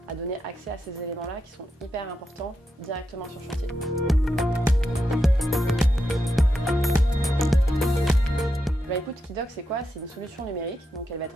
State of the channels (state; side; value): normal; both; correlation 0.86